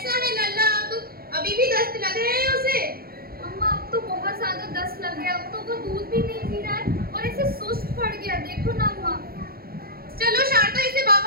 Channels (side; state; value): left; late; 0.44 ms